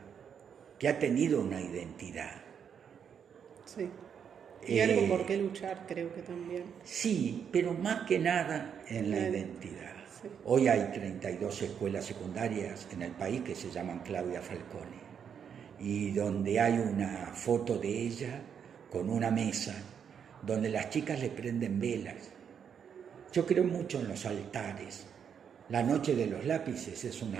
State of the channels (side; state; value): left; quieter; 7.6 dB